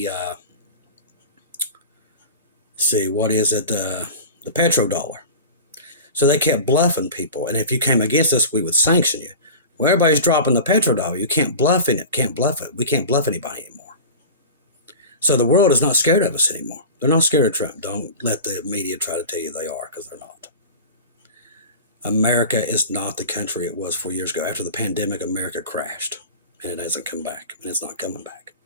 petrodollar. So they kept bluffing people. And if you came against us, we would sanction you. Well, everybody's dropping the petrodollar. You can't bluff it. Can't bluff it. We can't bluff anybody anymore. So the world is not scared of us anymore. They're not scared of Trump. Don't let the media try to tell you they are, because they're not. America is not the country it was 4 years ago. After the pandemic, America crashed, and it hasn't come back, and it's not coming back.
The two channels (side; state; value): both; inverted; correlation -0.33